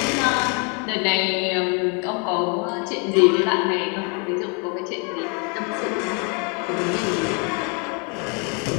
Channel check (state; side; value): quieter; right; 35.5 dB